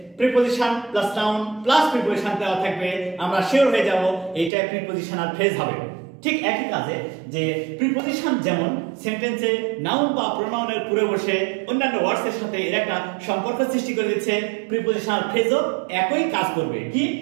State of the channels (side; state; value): left; drops out; at 4.5 s